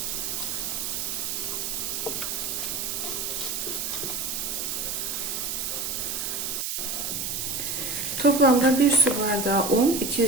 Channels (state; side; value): noise; right; hiss, 2 dB below the sound